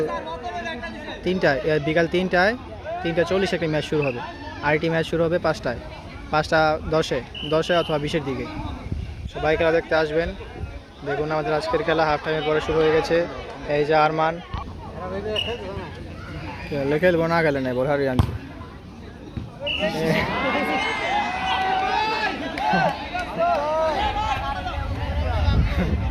3টায়, বিকাল 3টা 40 একটি ম্যাচ শুরু হবে। আরেকটি ম্যাচ শুরু হবে 5টা 10-এ অথবা 20-এর দিকে। সবাই খেলা দেখতে আসবেন। দেখুন আমাদের আজকের খেলা হাফ টাইমের পরে শুরু হয়ে গেছে। এই যে আরমান খেলবো না, গেলে নেই বোঝারি আনছি।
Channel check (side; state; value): both; identical; correlation 1.00